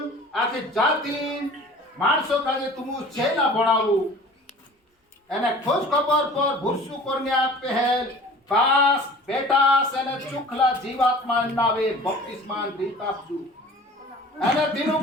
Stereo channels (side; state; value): both; normal; correlation 0.44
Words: आखी जाति माणसों का जे तुम चेला बनावू एने खोज खबर पर भुरसु करने पहल पास बेटा सेने चुखला जीवात्मा नावे बपतिस्मान दीतापजू एने